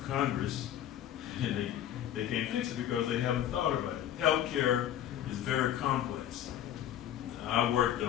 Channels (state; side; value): quieter; right; 11.1 dB